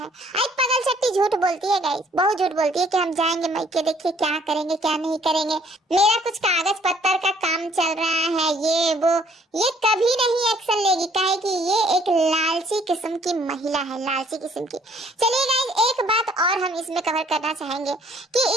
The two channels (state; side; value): normal; both; correlation 0.61